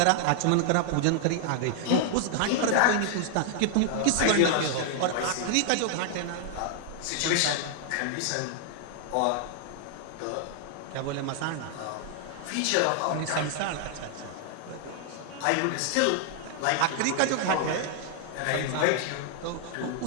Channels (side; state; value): both; different; correlation 0.00